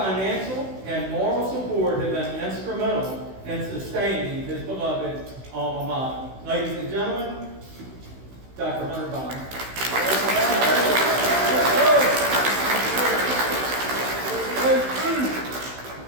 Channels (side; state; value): left; late; 16 ms